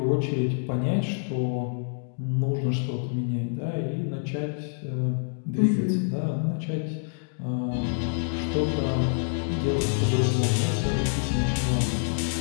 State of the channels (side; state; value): right; silent; 60 dB below the other